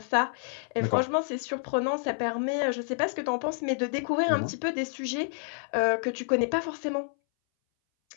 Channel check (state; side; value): silent; right; 59 dB below the other